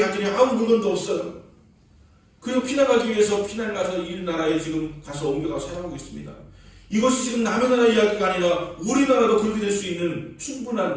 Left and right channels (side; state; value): both; identical; correlation 1.00